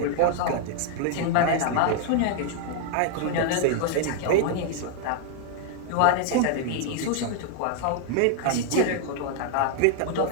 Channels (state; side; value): different; both; correlation 0.00